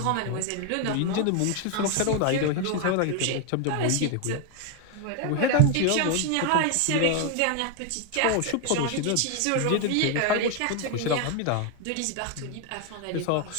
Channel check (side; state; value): both; different; correlation 0.01